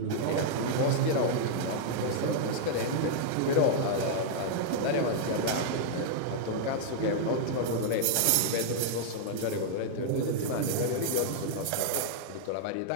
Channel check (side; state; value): both; different; correlation -0.01